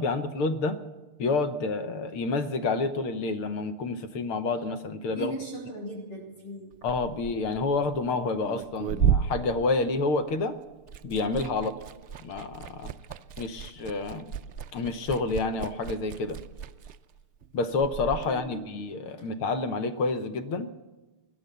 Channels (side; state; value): right; late; 6.7 ms